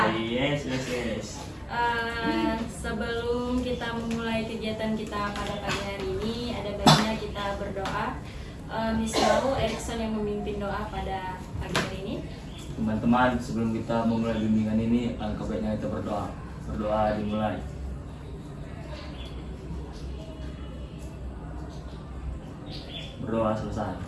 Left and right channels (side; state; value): both; identical; correlation 1.00